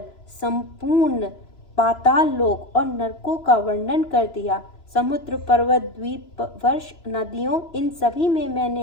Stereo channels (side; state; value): right; late; 3.0 ms